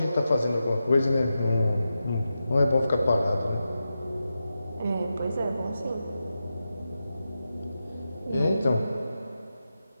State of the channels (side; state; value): both; inverted; correlation -0.90